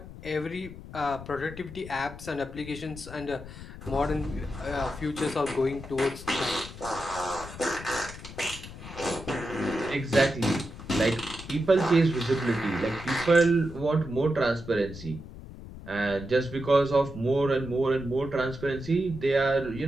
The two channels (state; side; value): noise; left; rumble, 13 dB below the sound